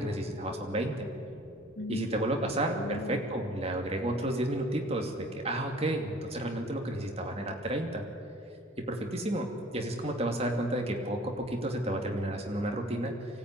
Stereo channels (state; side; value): normal; both; correlation 0.51